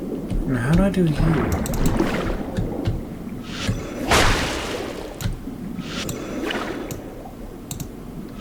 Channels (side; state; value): both; identical; correlation 1.00